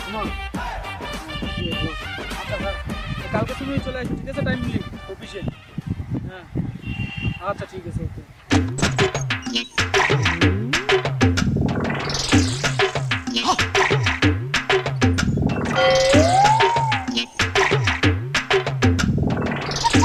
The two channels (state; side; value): identical; both; correlation 1.00